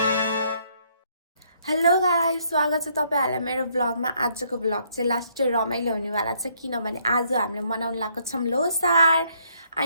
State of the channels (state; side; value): inverted; both; correlation -0.69